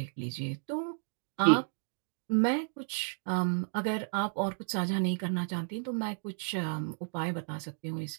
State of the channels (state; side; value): silent; left; digital silence